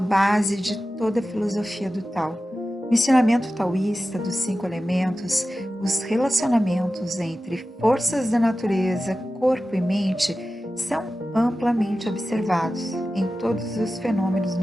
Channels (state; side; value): normal; both; correlation 0.94